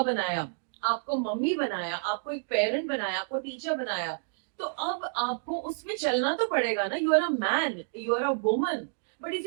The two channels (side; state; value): left; silent; digital silence